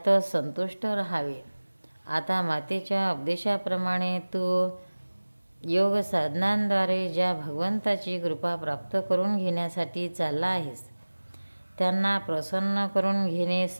संतुष्ट राहावे. आता मातेच्या उपदेशाप्रमाणे तू योग साधनांद्वारे ज्या भगवंताची कृपा प्राप्त करून घेण्यासाठी चालला आहेस त्यांना प्रसन्न करून घेणे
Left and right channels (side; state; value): both; inverted; correlation -1.00